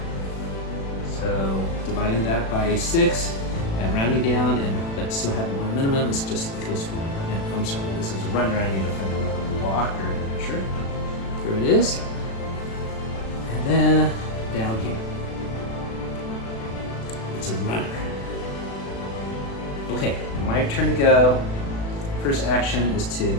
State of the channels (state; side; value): late; right; 36 ms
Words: So dividing that by 6 and rounding down, but still having 1 minimum is just equals 1. And, I'm sorry, this is a runner. I need to find another walker. Sure. Here it is. And then down here. It's a runner. Okay, my turn to go. First action is to